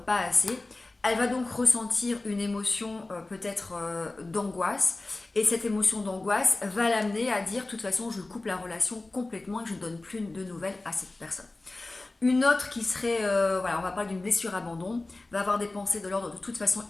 pas assez. Elle va donc ressentir une émotion peut-être d'angoisse, et cette émotion d'angoisse va l'amener à dire de toute façon je coupe la relation complètement et je ne donne plus de nouvelles à cette personne. Une autre qui serait, on va parler d'une blessure abandon, va avoir des pensées de l'ordre de toute façon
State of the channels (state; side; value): quieter; right; 3.0 dB